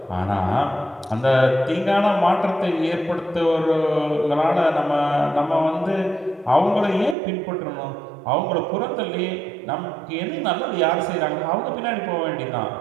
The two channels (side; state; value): left; drops out; at 7.2 s